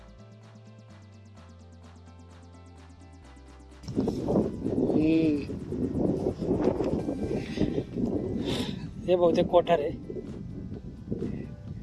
हे बहुतेक कोठार आहे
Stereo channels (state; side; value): identical; both; correlation 1.00